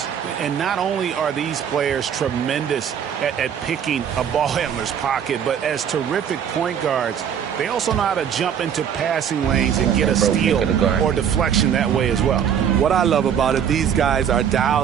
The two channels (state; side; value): quieter; left; 8.4 dB